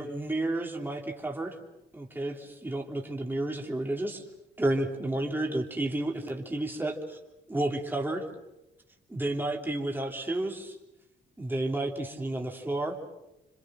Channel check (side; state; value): both; normal; correlation 0.85